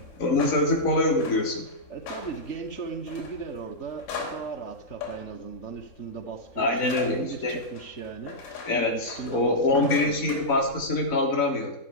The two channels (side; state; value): right; late; 3.7 ms